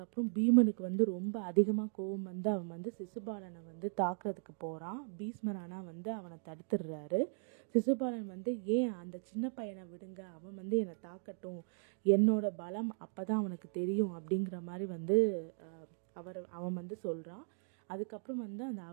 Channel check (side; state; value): left; silent; 53 dB below the other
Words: அப்புறம் பீமனுக்கு வந்து ரொம்ப அதிகமாக கோபம் வந்து அவன் வந்து சிசுபாலனை வந்து தாக்குறதுக்கு போகிறான். பீஷ்மர் ஆனால் வந்து அவனை தடுத்துடுறாரு. சிசுபாலன் வந்து ஏன் அந்த சின்ன பையனை விடுங்க, அவன் வந்து என்னை தாக்கட்டும், என்னோட பலம் அப்போதான் அவனுக்கு தெரியும் அப்படிங்கிற மாதிரி வந்து அவன் வந்து சொல்கிறான். அதுக்கப்புறம் வந்து அந்த